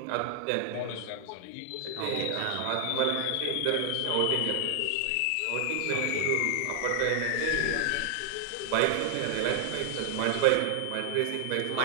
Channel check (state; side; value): different; both; correlation 0.00